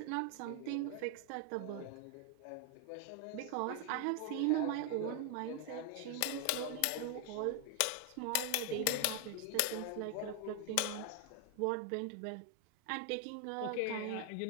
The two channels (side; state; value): both; different; correlation 0.00